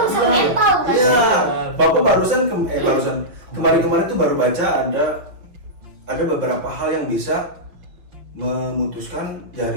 mental kan. Iya, Bapak barusan kemarin tuh baru baca ada beberapa hal yang bisa memutuskan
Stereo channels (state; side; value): late; left; 5.6 ms